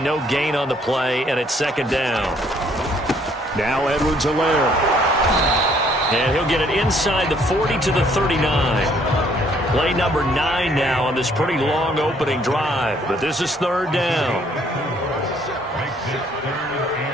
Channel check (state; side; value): normal; both; correlation 0.64